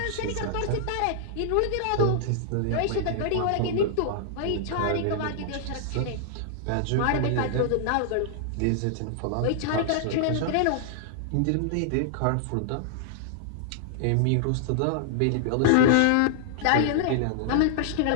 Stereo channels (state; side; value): different; both; correlation -0.01